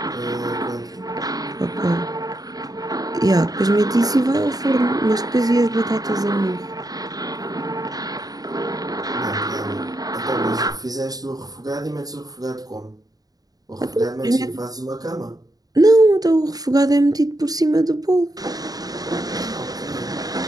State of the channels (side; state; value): left; late; 0.18 ms